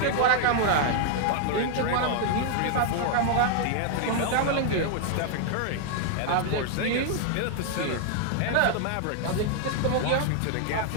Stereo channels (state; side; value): different; both; correlation 0.00